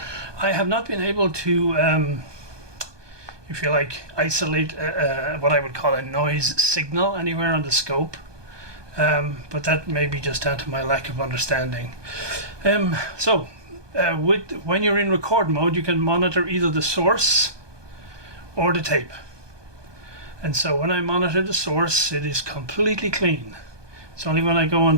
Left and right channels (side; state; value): left; late; 1.2 ms